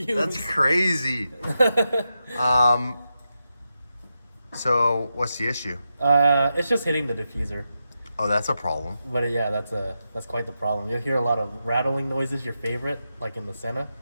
That's crazy. So what's the issue? It's just hitting the diffuser. Oh, that's a problem. But yeah, that's quite the problem. You'll hear a lot of rattling noises. Your favorite, like in the Senna.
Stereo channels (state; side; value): inverted; both; correlation -0.88